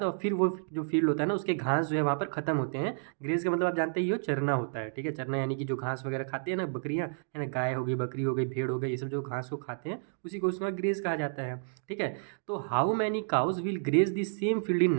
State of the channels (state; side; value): silent; left; digital silence